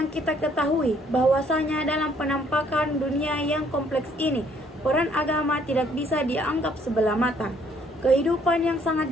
kita ketahui bahwasanya dalam penampakan dunia yang kompleks ini, peran agama tidak bisa dianggap sebelah mata. Kehidupan yang sangat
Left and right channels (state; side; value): normal; both; correlation 0.64